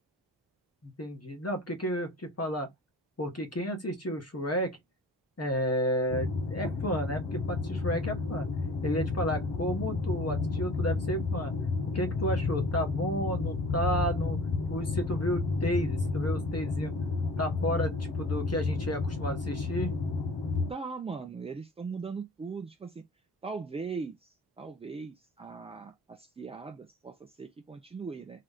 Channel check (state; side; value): normal; both; correlation 0.43